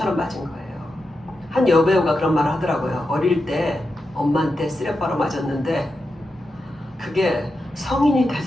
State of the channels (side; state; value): both; normal; correlation 0.88